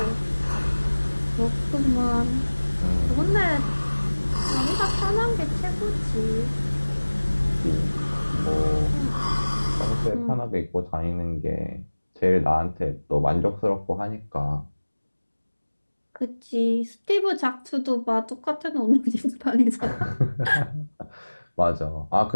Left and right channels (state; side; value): inverted; both; correlation -1.00